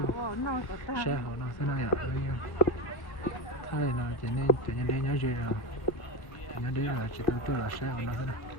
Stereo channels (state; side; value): late; right; 1.7 ms